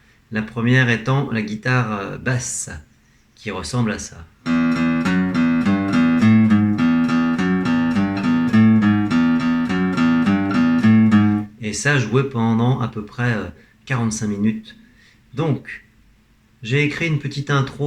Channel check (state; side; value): identical; both; correlation 1.00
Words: La première étant la guitare basse, qui ressemble à ça. Et ça joué pendant à peu près 45 minutes. Donc j'ai écrit une petite